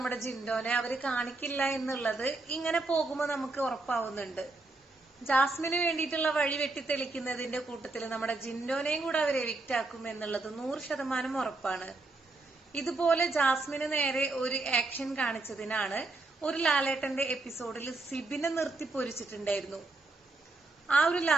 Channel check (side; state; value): left; quieter; 3.2 dB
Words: ജിൻഡോനെ അവര് കാണിക്കില്ല എന്നുള്ളത് ഇങ്ങനെ പോകുമ്പോ നമുക്ക് ഉറപ്പാവുന്നുണ്ട്. ജാസ്മിന് വേണ്ടിയിട്ടുള്ള വഴി വെട്ടിത്തെളിക്കുന്നതിന്റെ കൂട്ടത്തിൽ നമ്മുടെ ജിൻഡോനെയും കൂടെ അവർ എവിക്റ്റ് ആക്കും എന്നുള്ളത് 100% ഉറപ്പാണ്. ഇതുപോലെ ജാസ്മിന് നേരെ ഒരു ആക്ഷൻ കാണിച്ചതിനാണ് ഒരു ലാലേട്ടന്റെ എപ്പിസോഡിൽ സിബിനെ നിർത്തി പൊരിച്ചിട്ടുണ്ടായിരുന്നു. ആ ഒരു